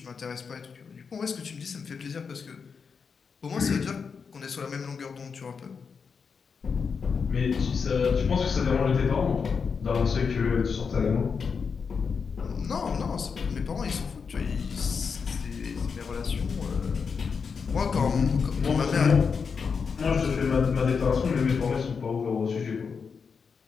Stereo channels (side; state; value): right; quieter; 5.7 dB